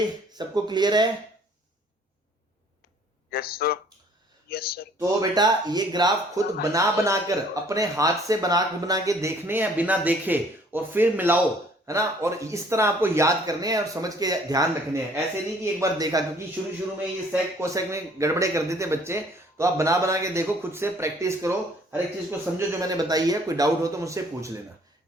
सबको क्लियर है? Yes sir. Yes sir. तो बेटा ये ग्राफ खुद बना बनाकर अपने हाथ से बना के देखने हैं बिना देखे, और फिर मिलाओ, है ना, और इस तरह आपको याद करने हैं और समझ के ध्यान रखने हैं। ऐसे नहीं कि एक बार देखा, क्योंकि शुरू में ये सेक कोसेक में गड़बड़े कर देते बच्चे, तो आप बना के देखो, खुद से प्रैक्टिस करो, हर एक चीज को समझो जो मैंने बताई है। कोई डाउट हो तो मुझसे पूछ लेना,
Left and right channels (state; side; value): normal; both; correlation 0.58